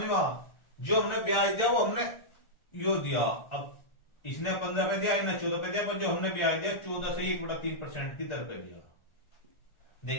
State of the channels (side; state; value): right; late; 1.4 ms